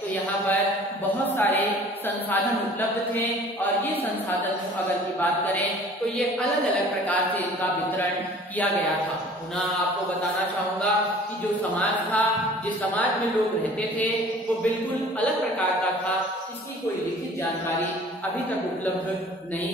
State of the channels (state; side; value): normal; both; correlation 0.48